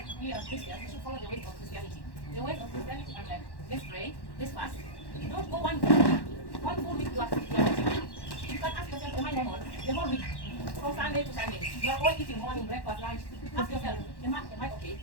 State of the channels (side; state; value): right; late; 1.1 ms